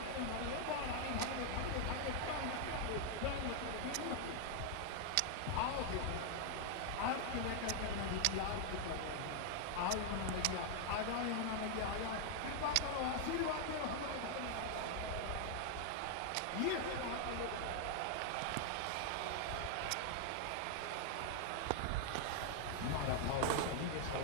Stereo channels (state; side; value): different; both; correlation 0.00